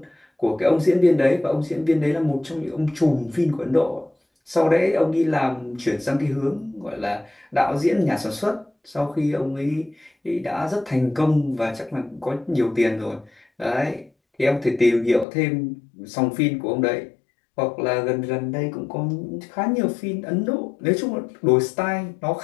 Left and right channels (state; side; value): drops out; right; at 15.2 s